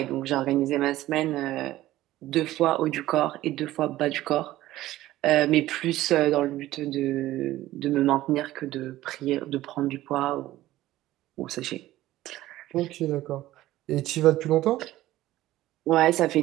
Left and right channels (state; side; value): quieter; left; 15.4 dB